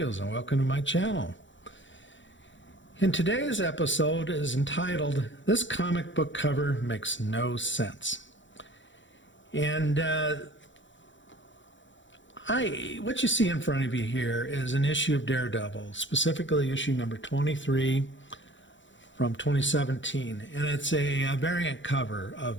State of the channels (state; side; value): late; right; 0.55 ms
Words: and welcome to my channel. In today's episode is entitled, This Comic Book Cover Makes No Sense. And what you see in front of you here is an issue of Daredevil, specifically issue number 23 from 2017. And it's a variant cover of